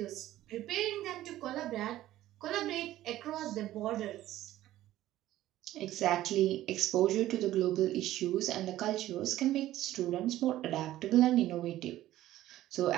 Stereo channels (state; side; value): quieter; left; 14.4 dB